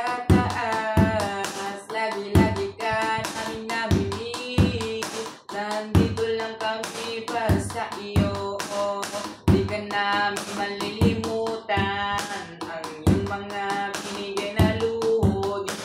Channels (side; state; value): both; identical; correlation 1.00